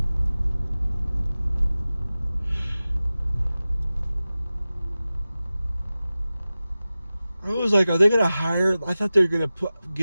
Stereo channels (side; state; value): both; inverted; correlation -0.96